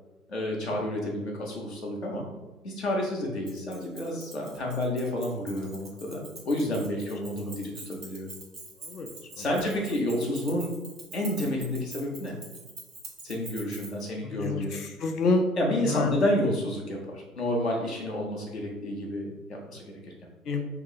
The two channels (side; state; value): both; normal; correlation 0.53